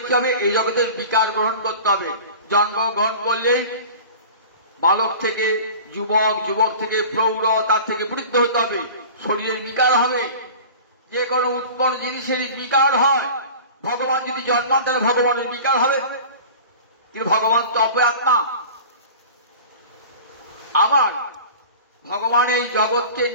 কি হবে? এই জগতের বিকার গ্রহণ করতে হবে। জন্মগ্রহণ করলেই বালক থেকে যুবক, যুবক থেকে প্রৌঢ়, তার থেকে বৃদ্ধ হতে হবে। শরীরের বিকার হবে, যে কোনো উৎপন্ন জিনিসের বিকার হয়। ভগবান যদি জন্মান তাহলে ভগবানের বিকার হবে, কিন্তু ভগবান তো অপর আত্মা। আবার ভগবান এই জগৎকে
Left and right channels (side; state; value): both; inverted; correlation -0.39